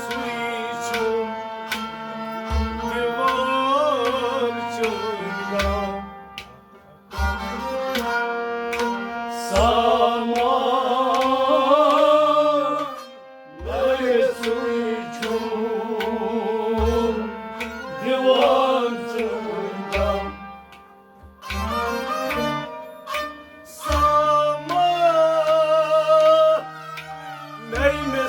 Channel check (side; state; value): both; identical; correlation 1.00